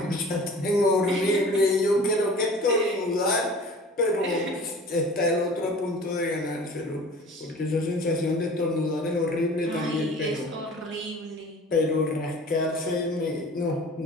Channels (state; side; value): normal; both; correlation 0.43